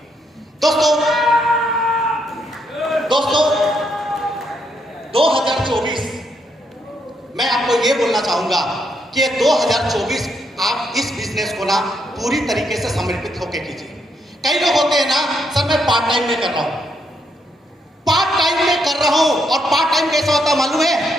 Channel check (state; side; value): normal; both; correlation 0.77